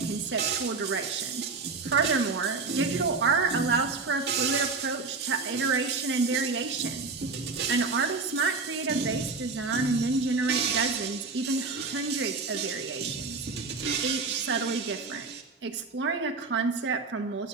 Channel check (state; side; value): quieter; left; 4.2 dB